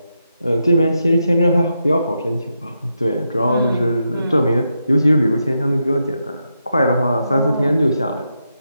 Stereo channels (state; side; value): inverted; both; correlation -0.84